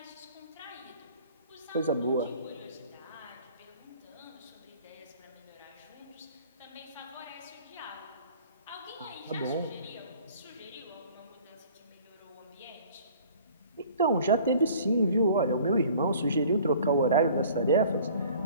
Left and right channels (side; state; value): both; inverted; correlation -0.50